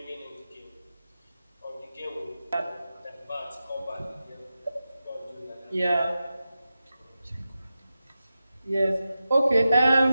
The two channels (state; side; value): inverted; both; correlation -0.92